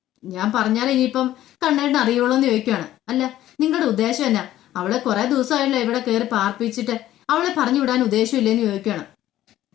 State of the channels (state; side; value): quieter; right; 13.5 dB